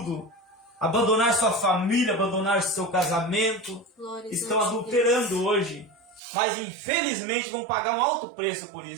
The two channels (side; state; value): left; drops out; at 6.2 s